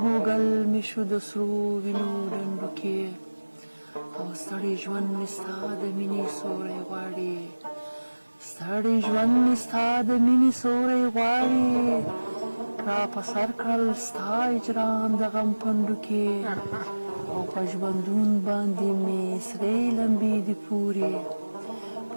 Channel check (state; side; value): inverted; both; correlation -1.00